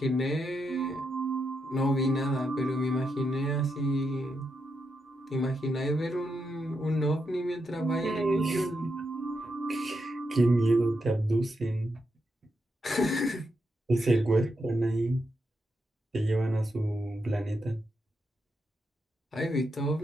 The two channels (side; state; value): both; normal; correlation 0.84